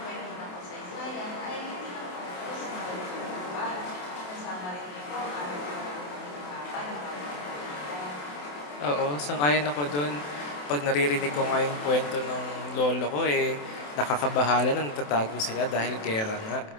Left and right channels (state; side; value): late; right; 27 ms